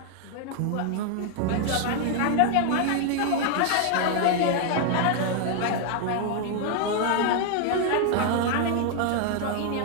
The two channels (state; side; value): different; both; correlation 0.00